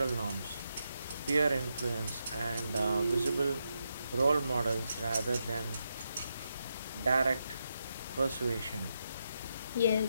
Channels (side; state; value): both; inverted; correlation -0.84